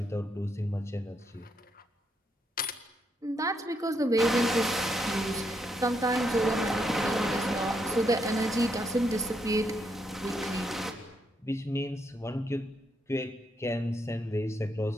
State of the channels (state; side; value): normal; both; correlation 0.78